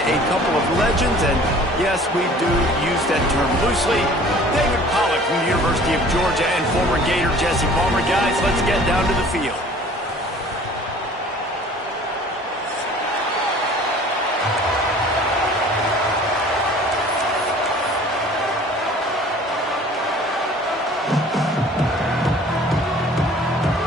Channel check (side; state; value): both; normal; correlation 0.49